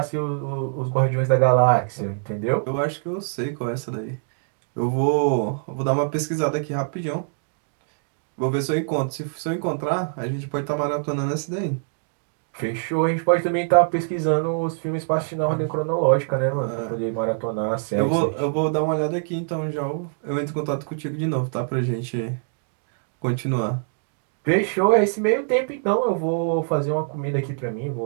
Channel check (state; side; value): silent; left; 63 dB below the other